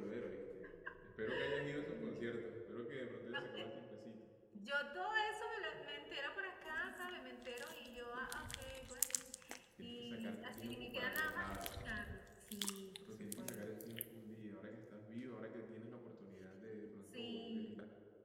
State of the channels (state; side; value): identical; both; correlation 1.00